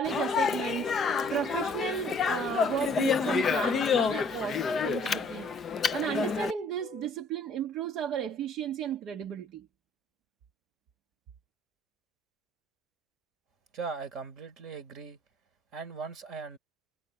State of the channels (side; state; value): both; normal; correlation 0.59